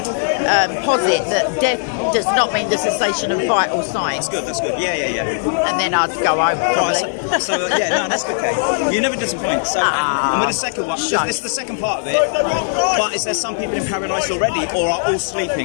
posit that death does not mean the cessation of vital signs. That's good. Yeah. And then I'd go home probably. That's good, Kate. You never disappoint. So, and with the second one, this is the second part of it. But is there some people in paradise already, or are all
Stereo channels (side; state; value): right; silent; digital silence